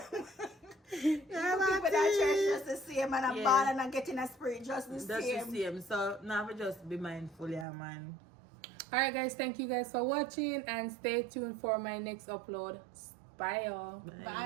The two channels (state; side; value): drops out; left; at 7.7 s